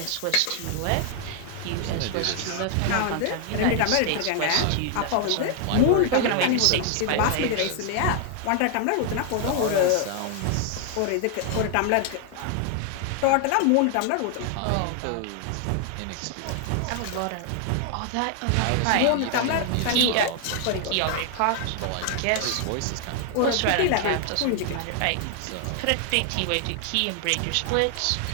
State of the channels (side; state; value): both; different; correlation 0.00